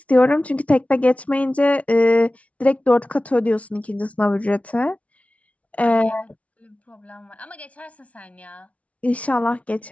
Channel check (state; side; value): late; right; 0.065 ms